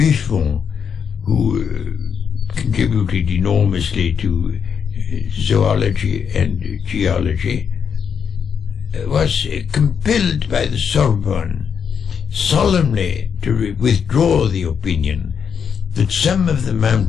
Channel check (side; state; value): right; quieter; 7.1 dB